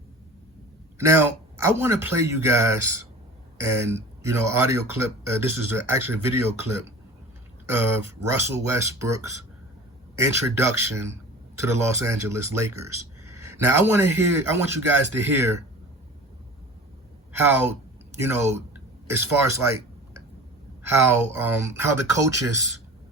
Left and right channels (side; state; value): both; normal; correlation 0.39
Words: Now, I want to play you guys an audio clip. This is actually a video clip of Russell Westbrook's introduction to the Los Angeles Lakers. Now, I want you guys to hear how, as far as like how the coaches.